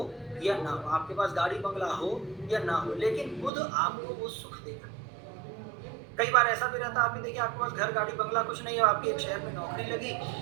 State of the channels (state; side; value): drops out; left; at 3.5 s